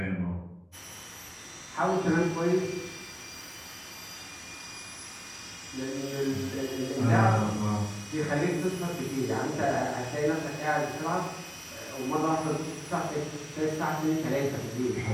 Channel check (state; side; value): identical; both; correlation 1.00